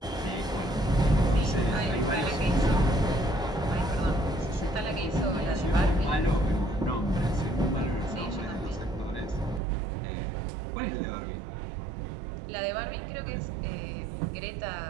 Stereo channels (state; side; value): drops out; left; at 9.6 s